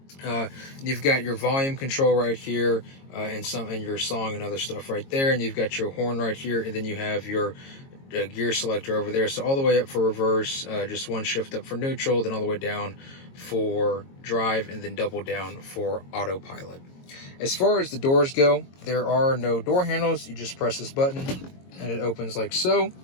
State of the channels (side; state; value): right; late; 22 ms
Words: You've got your volume control right here, and your song and other stuff right there, and you've got your horn right here, and then you have your gear selector over there. So all the way up for reverse, just one shift up for neutral, then all the way down for drive, and then double down for autopilot. As far as the doors go, there are no door handles. You just press this button and it opens like so.